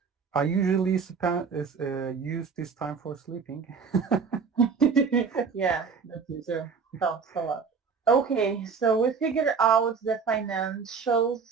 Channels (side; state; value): left; quieter; 5.6 dB